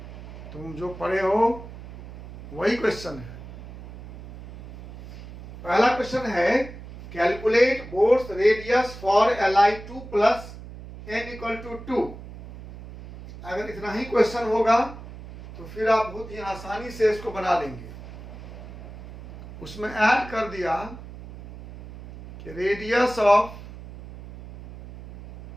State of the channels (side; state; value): right; noise; hum, 14 dB below the sound